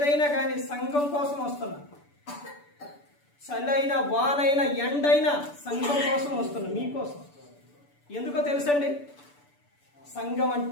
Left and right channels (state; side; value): late; right; 6.9 ms